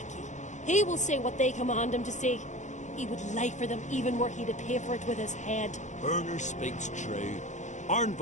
He will say what they command him to say. He would lie for them even were he to pay for it with his head. Berner speaks true.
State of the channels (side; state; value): right; late; 0.35 ms